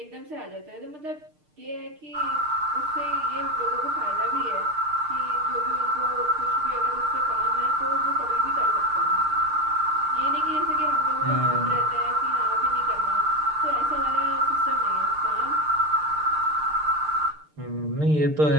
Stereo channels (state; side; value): late; left; 6.6 ms